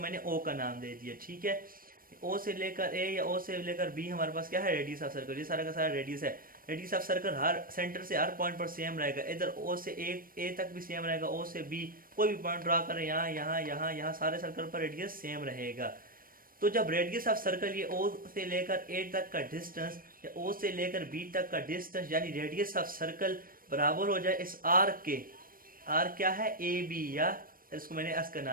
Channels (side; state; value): left; late; 0.41 ms